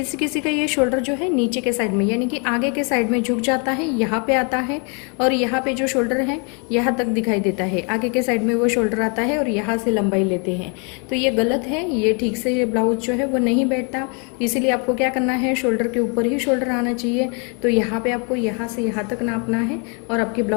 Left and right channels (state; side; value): quieter; right; 36.8 dB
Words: किसी का ये शोल्डर जो है नीचे के साइड में यानी कि आगे के साइड में झुक जाता है, यहाँ पे आता है और यहाँ पे जो शोल्डर है यहाँ तक दिखाई देता है। आगे के साइड में वो शोल्डर आता है और यहाँ से लंबाई लेते हैं, तो ये गलत है। ये ठीक से ये ब्लाउज जो है वो नहीं बैठता। इसीलिए आपको क्या करना है, शोल्डर के ऊपर ही शोल्डर आना चाहिए। तो यहाँ पे आपको यहाँ से यहाँ तक नापना है और आपकी